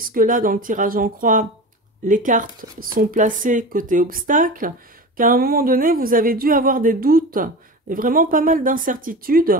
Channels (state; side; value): normal; both; correlation 0.30